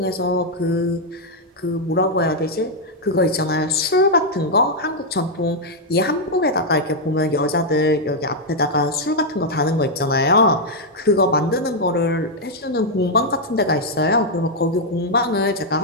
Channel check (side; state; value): both; normal; correlation -0.02